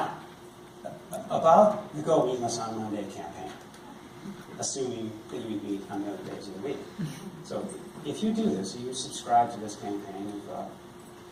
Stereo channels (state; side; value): identical; both; correlation 1.00